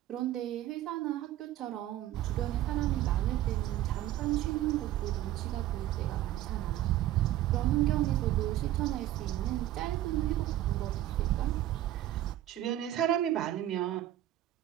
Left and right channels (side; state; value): left; quieter; 13.7 dB